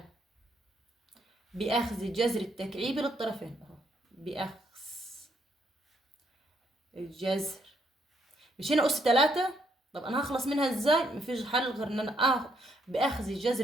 بأخذ جذر التكعيبي للطرفين اهو. بأخذ الجذر، مش هنا أس 3. طب أنا هخلص منها ازاي؟ مفيش حل غير إن أنا بأخذ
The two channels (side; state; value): both; normal; correlation 0.72